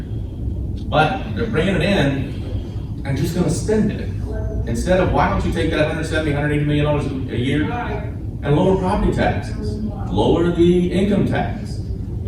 But they're bringing it in and just gonna spend it. Instead of, why don't you take that $170, $180 million a year and lower property taxes? Lower the income tax.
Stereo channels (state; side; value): identical; both; correlation 1.00